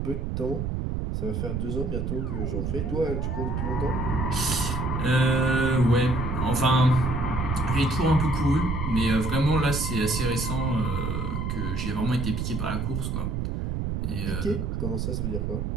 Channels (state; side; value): noise; right; rumble, 2 dB below the sound